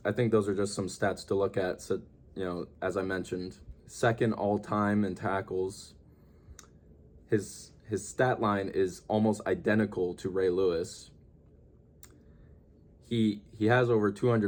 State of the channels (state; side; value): identical; both; correlation 1.00